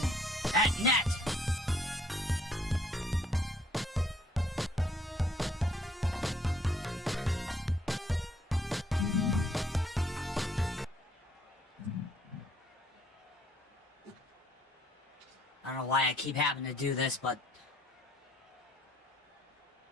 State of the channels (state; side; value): normal; both; correlation 0.63